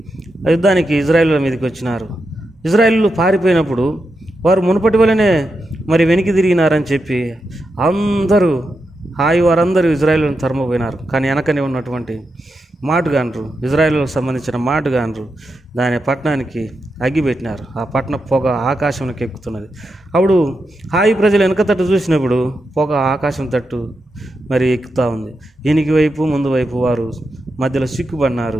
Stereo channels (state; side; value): normal; both; correlation 0.87